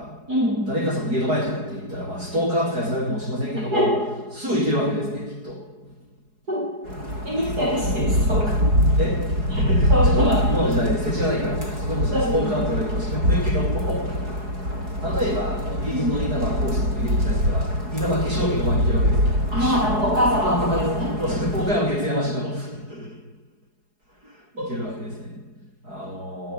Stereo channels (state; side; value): late; left; 4.7 ms